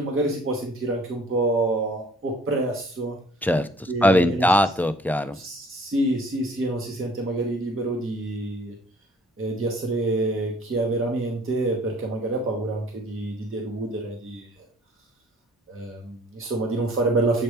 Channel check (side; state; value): both; normal; correlation 0.54